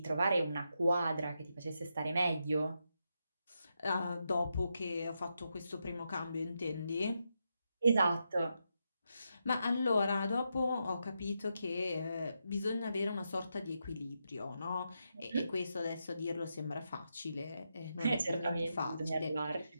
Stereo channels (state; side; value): inverted; both; correlation -0.84